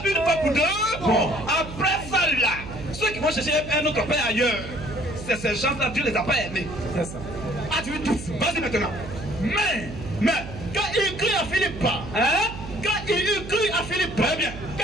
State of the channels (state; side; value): noise; right; hum, 11 dB below the sound